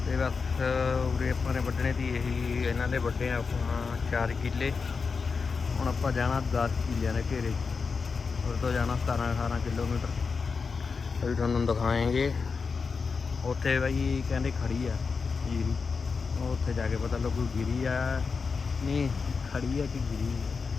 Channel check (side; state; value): right; quieter; 5.0 dB